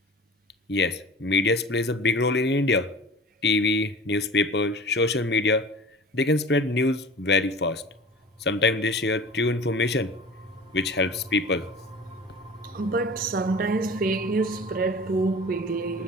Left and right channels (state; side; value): normal; both; correlation 0.39